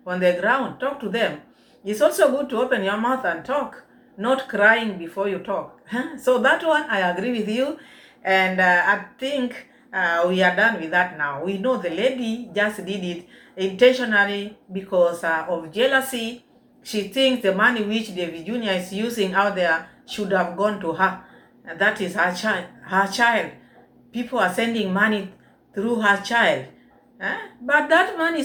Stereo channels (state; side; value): identical; both; correlation 1.00